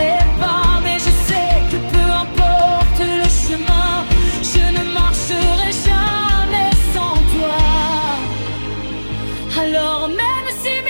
pas, mais je sais que peu importe le chemin, je ne marcherai jamais sans toi. Alors même si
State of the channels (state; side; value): inverted; both; correlation -1.00